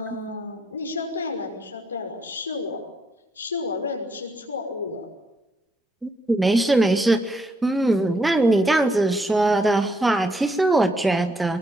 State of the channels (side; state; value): both; normal; correlation 0.75